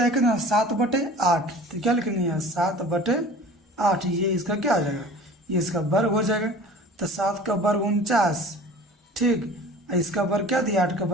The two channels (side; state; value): both; normal; correlation 0.42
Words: है कितना 7/8, तो क्या लिखेंगे यहाँ 7/8, ये इसका क्या हो जाएगा ये इसका वर्ग हो जाएगा। तो 7 का वर्ग 49, ठीक, इसका वर्ग क्या दिया 8 का